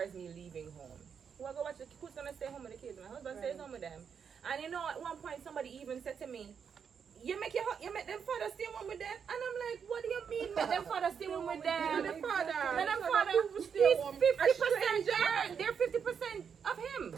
me leaving home. Who I go watch who's gonna stay home with the kids? My husband stays home with them. And you know, at one point somebody even said to me, you make them father stay one with them, and I'm like, what do you mean make them father stay one with them? The father. Let them father. He's 50%. They're 50% of him.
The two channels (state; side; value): quieter; left; 6.9 dB